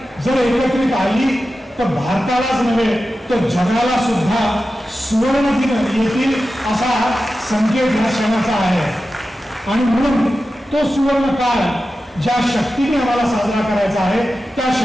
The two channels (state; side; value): normal; both; correlation 0.93